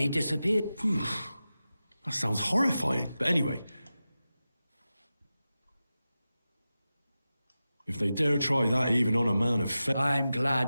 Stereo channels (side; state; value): both; inverted; correlation -0.93